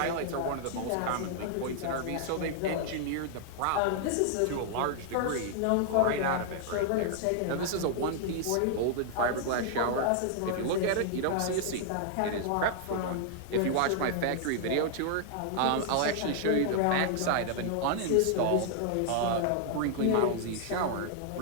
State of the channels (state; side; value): different; both; correlation -0.01